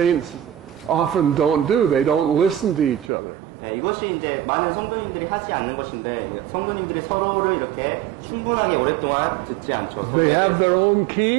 often don't do. They don't listen to each other. 이것이 이제 많은 성도님들이 하지 않는 것인데 성도님들이 서로를 이렇게 충분하게 오랫동안 듣지 않죠. 서로에 They have their 대해서. own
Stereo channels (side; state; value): left; drops out; at 3.1 s